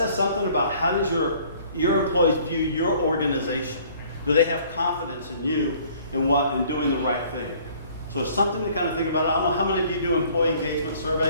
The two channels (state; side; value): inverted; both; correlation -0.56